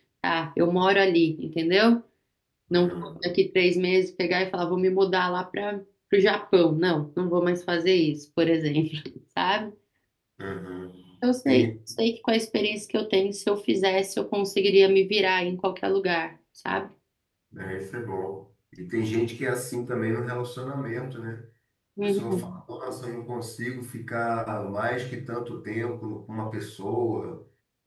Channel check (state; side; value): identical; both; correlation 1.00